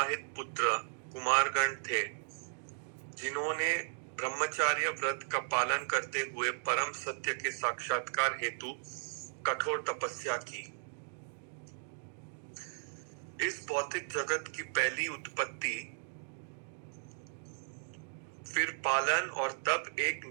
पुत्र कुमारगण थे, जिन्होंने ब्रह्मचार्य व्रत का पालन करते हुए परम सत्य के साक्षात्कार हेतु कठोर तपस्या की। इस भौतिक जगत की पहली उत्पत्ति, फिर पालन और तब एक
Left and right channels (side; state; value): left; silent; digital silence